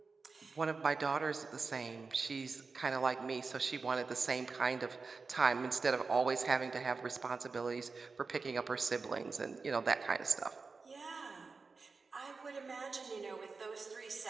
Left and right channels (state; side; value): quieter; left; 4.4 dB